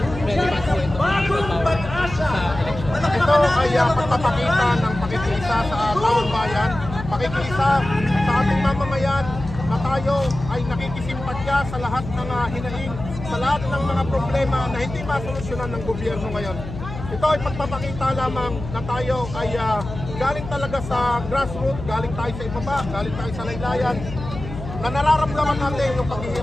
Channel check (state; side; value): noise; left; hum, 10 dB below the sound